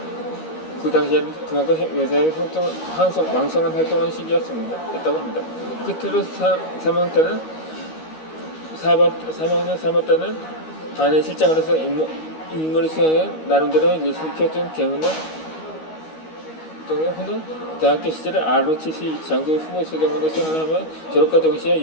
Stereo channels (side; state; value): right; late; 13 ms